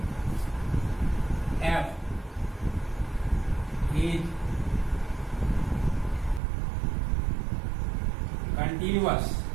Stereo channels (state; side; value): drops out; left; at 6.4 s